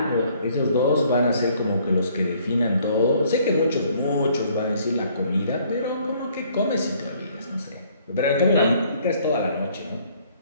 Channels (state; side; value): inverted; both; correlation -0.62